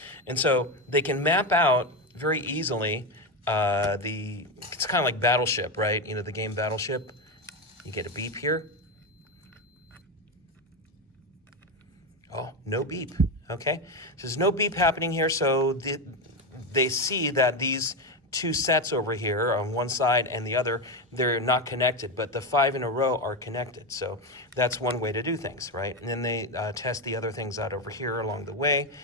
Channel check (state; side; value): normal; both; correlation 0.13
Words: And so they can map out very easily it's kind of like Battleship, right? The game Battleship. You get a beep here. Oh, no beep, okay? So there's no beep happening here, so they see that these two sets over here on one side and the other, they're not connected, but the 5 in a row are connected. So that's one way to do things, right? And then they test the other things out over here along the way,